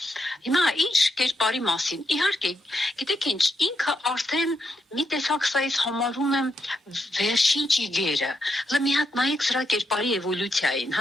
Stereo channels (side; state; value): both; normal; correlation 0.82